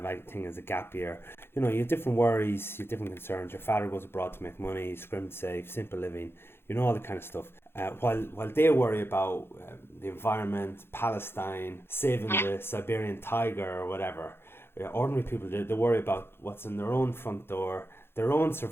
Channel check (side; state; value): right; late; 0.11 ms